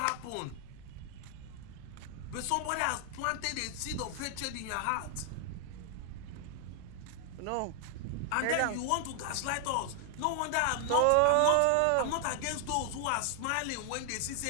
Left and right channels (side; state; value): both; different; correlation 0.00